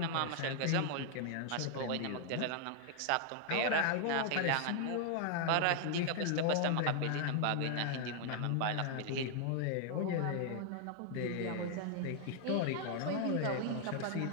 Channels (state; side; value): different; both; correlation 0.00